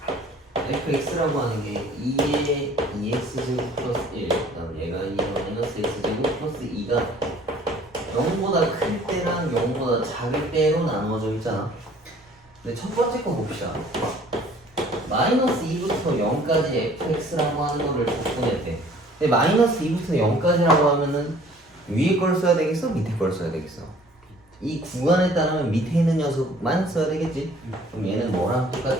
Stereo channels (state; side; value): normal; both; correlation 0.54